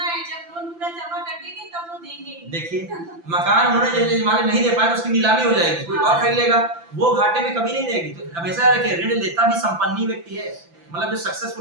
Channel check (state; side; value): late; left; 5.9 ms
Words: जब लोन पूरा जमा कर देंगे तब वो देंगे। देखिए मकान उन्होंने जैसे जमाने नहीं दे पाए तो उसकी नीलामी हो जाएगी, कोई और खरीद लेगा, वो घाटे में कभी नहीं देगी। तो हमेशा रखिए ऋण लेता भी संपन्न ही व्यक्ति है। मतलब जो